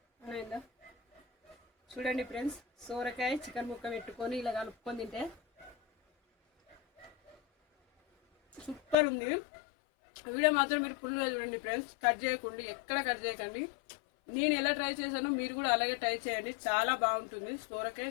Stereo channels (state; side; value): drops out; right; at 9.0 s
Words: చూడండి ఫ్రెండ్స్, సోరకాయ చికెన్ ముక్క పెట్టుకొని ఇలా కలుపుకొని తింటే సూపర్ ఉంది. వీడియో మాత్రం మీరు ఫుల్గా చూడండి ఫ్రెండ్స్, ఎక్కడ కట్ చేయకండి. నేను ఎలా ట్రై చేశానో మీరు కూడా అలాగే ట్రై చేయండి, చాలా బాగుంటుంది సోరకాయ